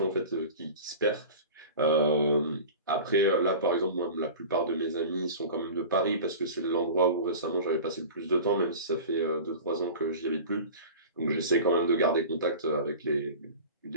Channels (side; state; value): both; inverted; correlation -0.35